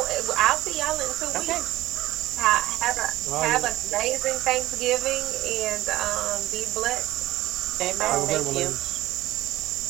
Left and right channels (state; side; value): quieter; left; 16.2 dB